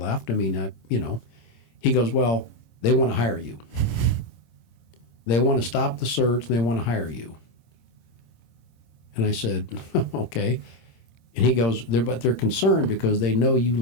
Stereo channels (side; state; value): right; late; 26 ms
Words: I mean, He goes, "Well, they want to hire you. They want to stop the search, and they want to hire you." And I said, "Okay." And he goes, but they're concerned because they know you